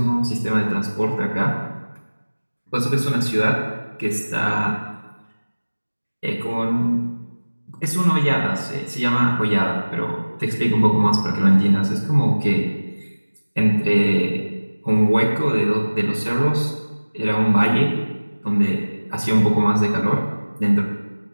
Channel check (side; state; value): both; inverted; correlation -1.00